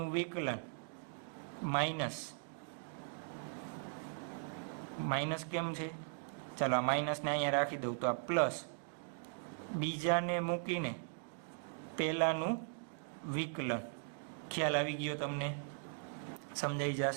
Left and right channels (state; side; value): silent; left; digital silence